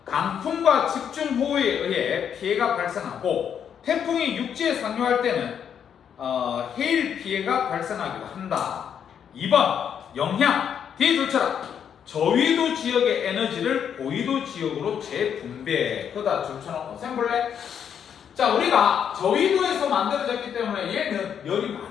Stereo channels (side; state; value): right; quieter; 8.2 dB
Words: 강풍과 집중호우에 의해 피해가 발생하고 태풍이 육지에 상륙할 때는 해일 피해가 발생하기도 한다. 2번 영향. 뒤에 둘쳐라. 저위도 지역의 에너지를 고위도 지역으로 재분배. 그다 줄쳐놓고 셈볼래? 자, 우리가 저위도에서 만들어졌기 때문에 얘는 열이